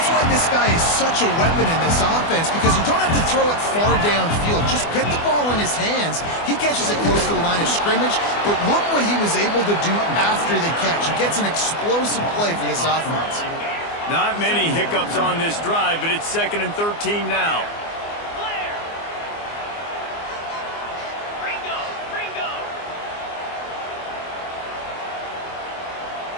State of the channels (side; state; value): right; late; 24 ms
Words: why this guy is such a weapon in this offense, because you don't have to throw it far downfield. Just get the ball in his hands. He catches it close to the line of scrimmage, but look what he was able to do after the catch. He gets an explosive play for this offense. Not many hiccups on this drive, but it's 2nd and 13 now.